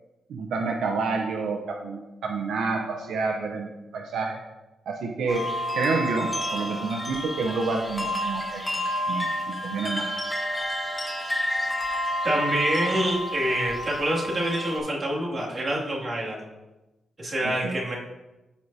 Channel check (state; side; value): normal; both; correlation 0.79